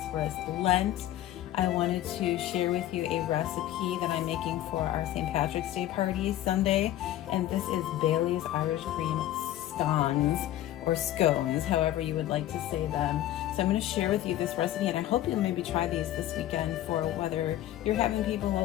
Lent. I wanted to share with you a recipe that I'm making for our St. Patrick's Day party Sunday, and this is Bailey's Irish Cream Scones, or scones, however you would like to say them. So I'm going to share with you this recipe, and I hope you'll maybe try these this weekend for whether you're having people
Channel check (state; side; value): quieter; right; 13.4 dB